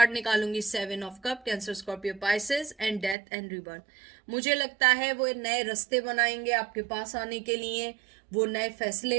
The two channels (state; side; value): drops out; left; at 3.2 s